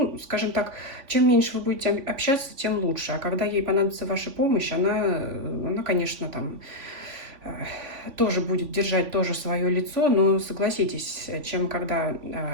скажем так, чем меньше вы будете общаться, тем лучше. А когда ей понадобится ваша помощь, она конечно, там тоже будет держать тоже свое лицо, но согласитесь, чем когда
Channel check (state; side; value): late; left; 3.5 ms